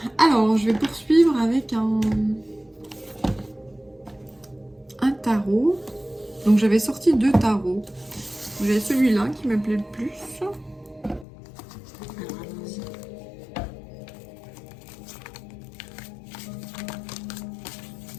Alors, je vais poursuivre avec un tarot. Donc j'avais sorti 2 tarots. J'ai celui-là qui me plaît le plus. Alors allons-y.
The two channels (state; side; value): drops out; right; at 11.2 s